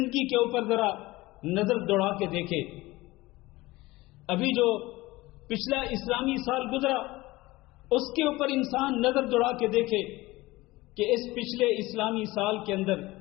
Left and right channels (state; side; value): quieter; right; 19.9 dB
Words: کے اوپر ذرا نظر دوڑا کے دیکھے. ابھی جو پچھلا اسلامی سال گزرا اس کے اوپر انسان نظر دوڑا کے دیکھے کہ اس پچھلے اسلامی سال کے اندر